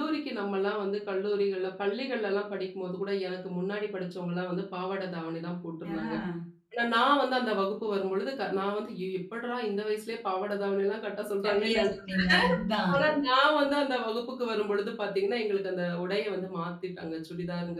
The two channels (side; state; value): both; identical; correlation 1.00